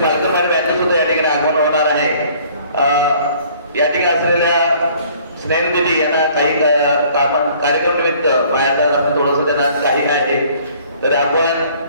पालकमारी बँकेत सुद्धा या ठिकाणी आगमन होणार आहे। या ठिकाणी असलेल्या स्नेहल दिदी यांना काही कार्यक्रम निमित्त बाहेर जाणं थोडंसं त्यांना काही आहे, तर आपण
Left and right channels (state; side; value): inverted; both; correlation -0.56